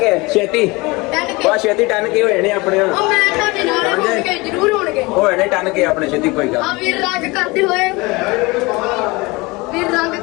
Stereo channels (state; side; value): quieter; right; 24.2 dB